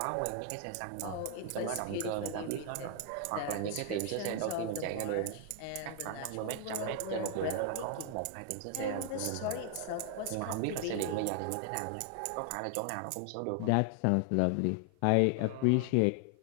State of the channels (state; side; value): different; both; correlation 0.00